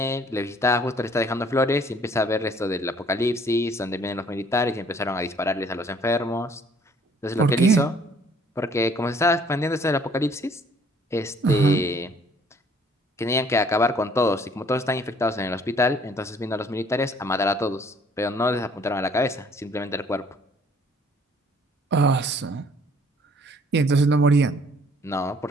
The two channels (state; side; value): normal; both; correlation 0.58